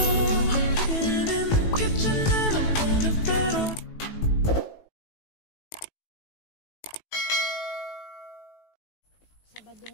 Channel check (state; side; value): late; right; 18 ms